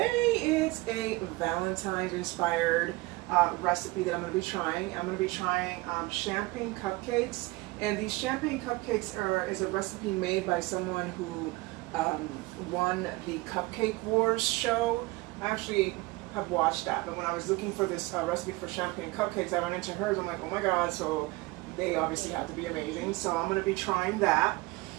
is a Valentine's inspired recipe that I'm going to be trying. I'm going to be trying champagne cupcakes, and these champagne cupcakes is a recipe made by someone who won the Cupcake Wars show. I actually have watched that, but when I was looking for this recipe for champagne cupcakes, I ran into hers. I'm like, oh my god, so they obviously have to be amazing. So I'm going to be trying that.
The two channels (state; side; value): quieter; left; 22.0 dB